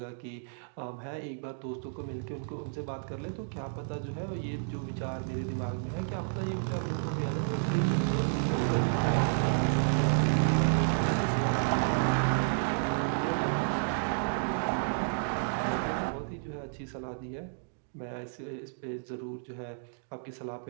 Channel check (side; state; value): left; silent; digital silence